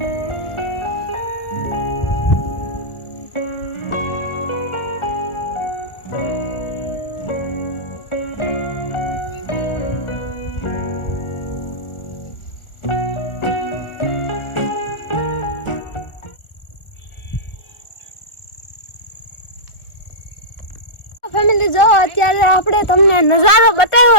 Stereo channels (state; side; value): late; right; 1.4 ms